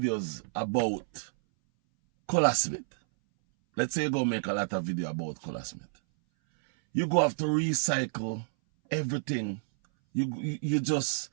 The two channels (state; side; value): silent; left; 58 dB below the other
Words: about Colasmith, let's say you go make a lot of video about Colasmith, you go have to recycle everything. It